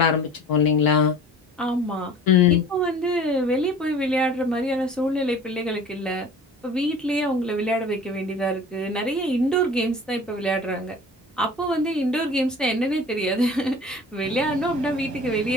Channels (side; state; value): both; normal; correlation 0.43